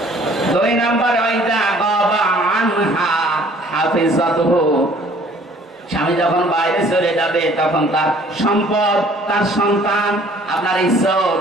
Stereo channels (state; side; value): normal; both; correlation 0.56